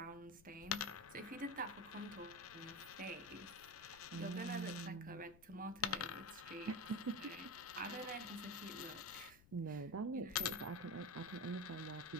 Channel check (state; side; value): noise; left; rumble, 22 dB below the sound